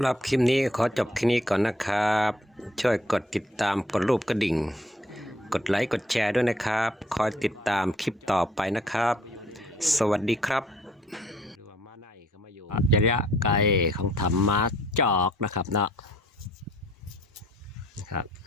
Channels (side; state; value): both; normal; correlation 0.61